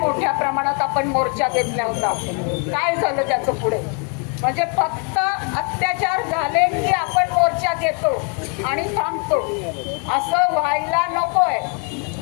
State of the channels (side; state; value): right; quieter; 36.1 dB